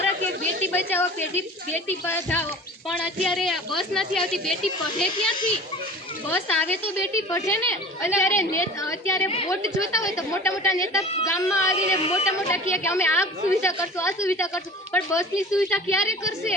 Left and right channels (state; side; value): normal; both; correlation 0.41